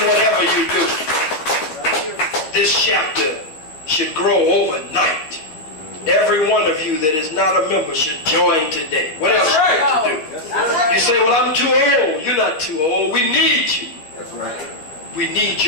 whatever you do. This chapter should grow overnight. Every one of you that is not a member should join today. What else should you do? You say, well, I'm too old. You're not too old. We need you. That's right. We need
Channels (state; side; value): late; right; 13 ms